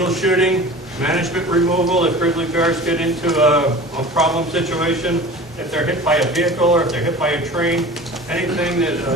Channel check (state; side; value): normal; both; correlation 0.38